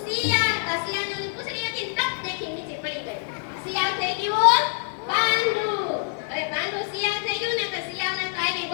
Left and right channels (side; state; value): right; silent; 58 dB below the other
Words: શિયાળ. શિયાળની પૂંછડી હતી ને ટપ દેખી નીચે પડી ગઈ. શિયાળ થઈ ગયું પાંડુ. હવે પાંડુ શિયાળ થઈ ગયું ને તો શિયાળને તો આવી